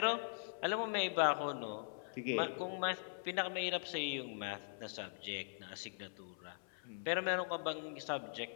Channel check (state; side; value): silent; right; 50 dB below the other